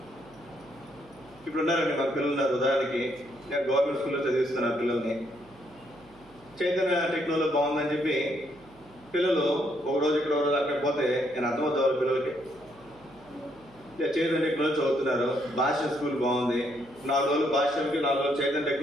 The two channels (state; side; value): noise; right; hum, 26 dB below the sound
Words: ఇప్పుడు ఉన్నారండి. మా పిల్లలు ఉన్నారు. ఉదాహరణకి నేను గవర్నమెంట్ స్కూల్లో చదివిస్తున్నాను పిల్లల్ని. చైతన్య టెక్నాలజీ బాగుందని చెప్పి పిల్లలు ఒక రోజు ఇక్కడ ఒక రోజు అక్కడ పోతే నేను అర్థమవుతా వాళ్ళ పిల్లలకి. చైతన్య టెక్నాలజీ చదువుతున్నారు, భాష స్కూల్ బాగుంది, 4 రోజులు భాషకి, 4 రోజులు చైతన్య